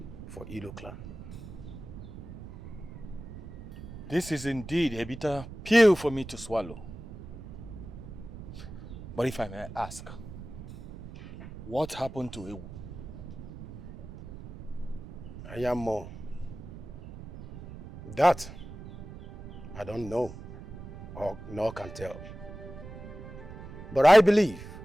for Ilo clan. This is indeed a bitter pill for me to swallow. But if I may ask, what happened to Ewu? I am more. That I don't know or nor can tell. But I believe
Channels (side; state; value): right; noise; rumble, 13 dB below the sound